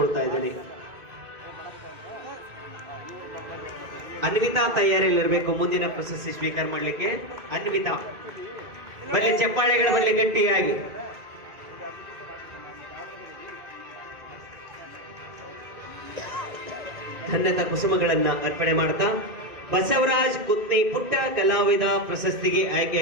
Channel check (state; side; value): late; left; 1.9 ms